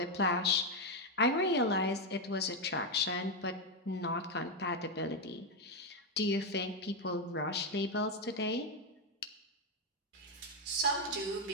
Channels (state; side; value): normal; both; correlation 0.05